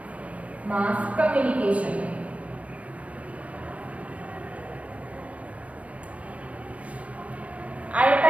Mass communication. At a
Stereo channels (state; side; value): late; left; 0.065 ms